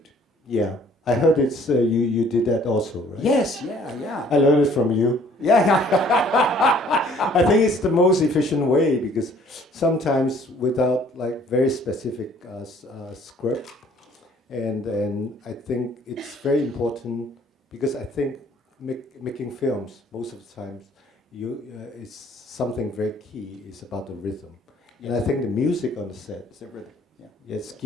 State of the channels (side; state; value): both; normal; correlation 0.57